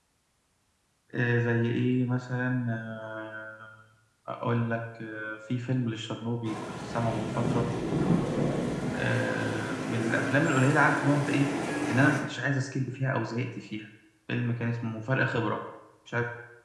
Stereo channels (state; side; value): identical; both; correlation 1.00